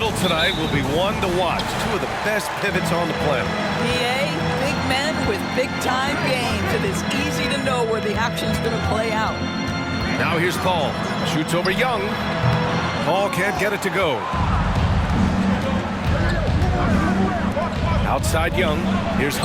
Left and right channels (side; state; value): both; identical; correlation 1.00